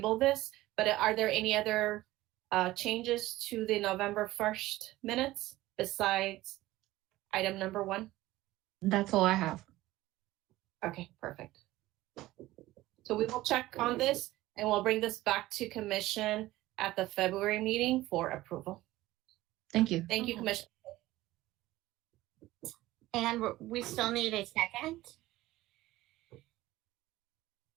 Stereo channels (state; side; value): quieter; left; 17.0 dB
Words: this. But are there any other changes to the November 1st minutes besides item number 1? That's all I have. Okay, perfect. So we will check on this and we'll bring this back to commission at the February meeting for approval. Thank you. Thank you, Commissioner. And we still need a second.